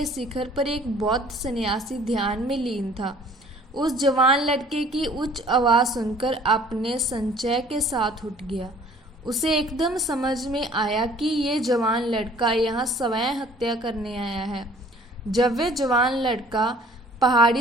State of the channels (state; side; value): normal; both; correlation 0.54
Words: शिखर पर एक बौद्ध सन्यासी ध्यान में लीन था। उस जवान लड़के की उच्च आवाज़ सुनकर अपने संचय के साथ उठ गया। उसे एकदम समझ में आया कि ये जवान लड़का यहाँ स्वयं हत्या करने आया है। जब वह जवान लड़का